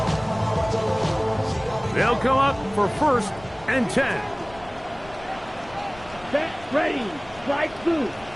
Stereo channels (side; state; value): left; noise; rumble, 21 dB below the sound